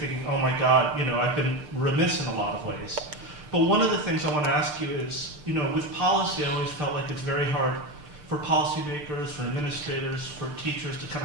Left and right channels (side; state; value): left; late; 6.7 ms